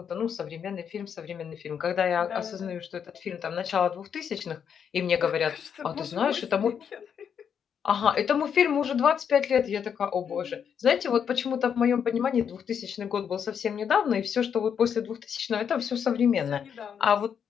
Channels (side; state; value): right; quieter; 7.7 dB